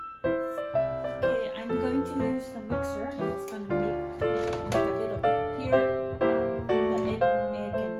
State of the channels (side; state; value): both; identical; correlation 1.00